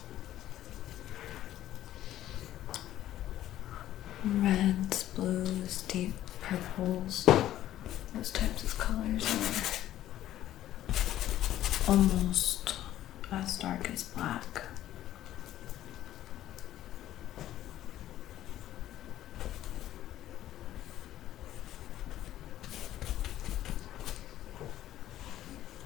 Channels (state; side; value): quieter; right; 13.1 dB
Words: Reds, blues, deep purples, those types of colors are almost as dark as black.